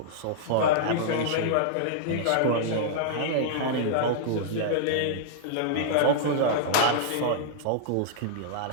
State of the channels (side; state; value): both; different; correlation -0.02